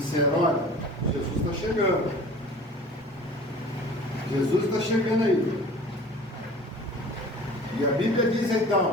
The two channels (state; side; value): normal; both; correlation 0.43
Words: olha, Jesus está chegando. Jesus está chegando aí. E a Bíblia diz